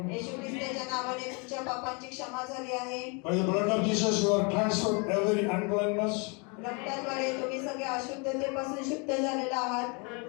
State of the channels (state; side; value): quieter; right; 32.8 dB